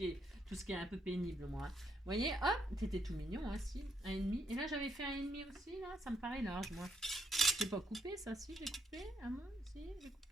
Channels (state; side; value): normal; both; correlation 0.76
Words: est un peu pénible, moi. Vous voyez, hop, c'était tout mignon, hein, si, 1,5. Et là, j'avais fait 1,5 aussi, là, ça me paraît large, moi. J'ai pas coupé ça, si, j'ai coupé. Ah bon, si, j'ai